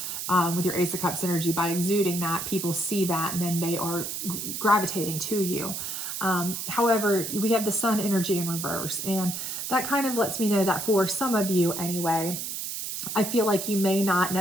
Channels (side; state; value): right; noise; hiss, 5 dB below the sound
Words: with your Ace of Cups energy. By exuding that, people see that and then they are gravitating to you. However, we have the Sun energy in reverse, and that kind of lets me know that for some of you anyway, I feel like you may not